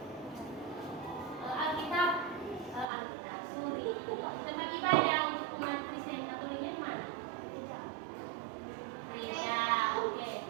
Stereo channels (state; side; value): drops out; left; at 2.9 s